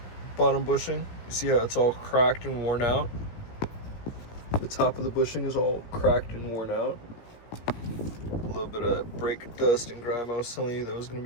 bottom bushing? You see how it's all cracked and worn out? The top of the bushing is all cracked and worn out. A little bit of brake dust and grime I was telling you that was gonna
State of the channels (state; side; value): late; right; 17 ms